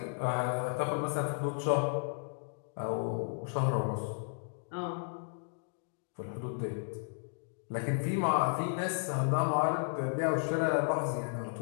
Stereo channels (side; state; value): right; silent; digital silence